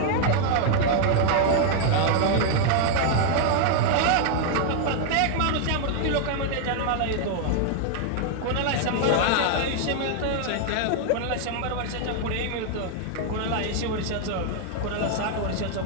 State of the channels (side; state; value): both; different; correlation 0.00